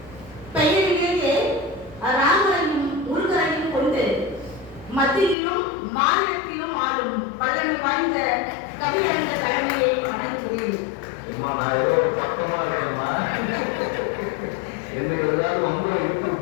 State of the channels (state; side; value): drops out; right; at 5.4 s